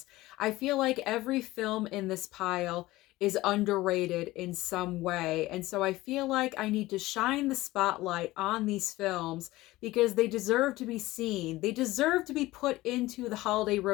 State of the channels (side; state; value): right; quieter; 18.2 dB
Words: I feel like every film in this pile is underrated in some way, and so I feel like I need to shine the spotlight on these films because they deserve to be seen. They deserve to be put into the holiday